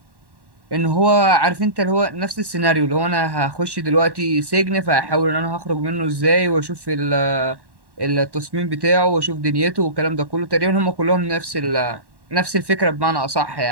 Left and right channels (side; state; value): left; late; 1.1 ms